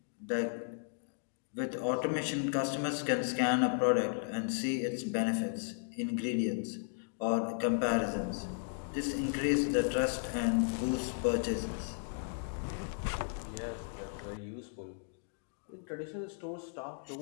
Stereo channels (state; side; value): silent; right; digital silence